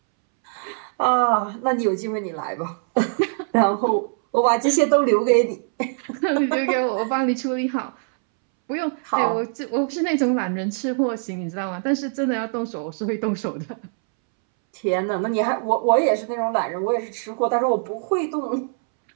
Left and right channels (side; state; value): left; silent; 64 dB below the other